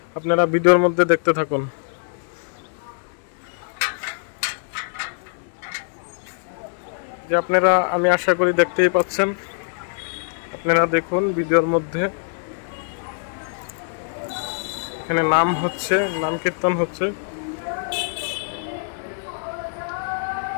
আপনারা ভিডিওর মধ্যে দেখতে থাকুন। যে আপনারা, আমি আশা করি দেখতেই পাচ্ছেন, আপনারা দেখুন ভিডিওর মধ্যে। এখানে নাম হচ্ছে, নাম কীর্তন হচ্ছে।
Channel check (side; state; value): right; silent; 63 dB below the other